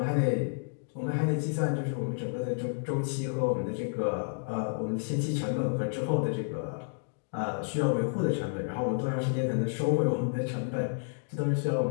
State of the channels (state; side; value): silent; right; digital silence